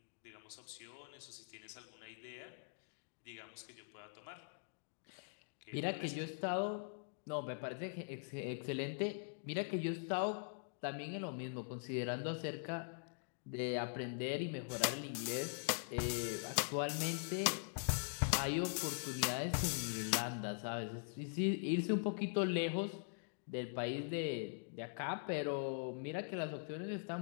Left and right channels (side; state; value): right; silent; digital silence